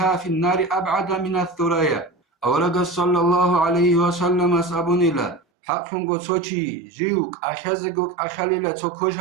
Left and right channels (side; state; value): left; drops out; at 5.4 s